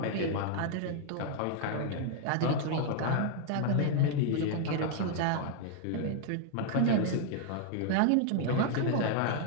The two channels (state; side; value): different; both; correlation 0.00